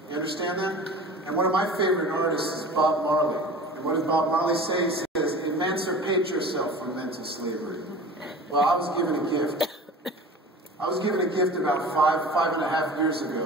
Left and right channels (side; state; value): both; normal; correlation 0.39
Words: You understand that? And one of my favorite artists is Bob Marley. And what does Bob Marley say? He says, emancipate yourself from mental slavery. Well, I was given a gift. I was given a gift about 5.5 years